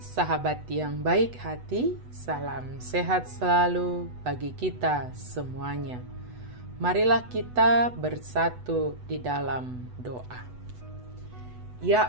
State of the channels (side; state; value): left; late; 8.1 ms